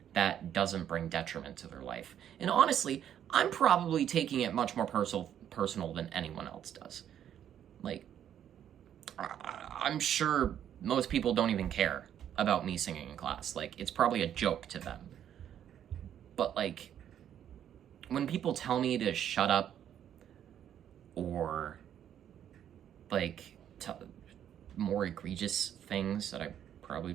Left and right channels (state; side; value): quieter; left; 10.0 dB